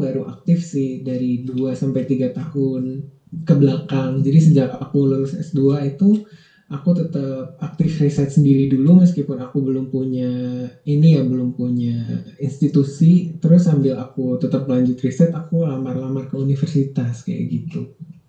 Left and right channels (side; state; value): both; identical; correlation 1.00